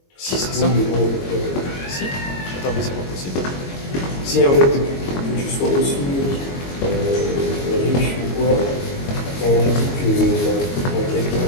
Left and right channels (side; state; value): right; late; 22 ms